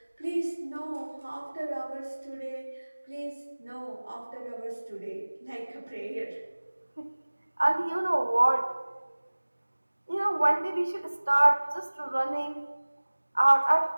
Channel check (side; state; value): both; inverted; correlation -1.00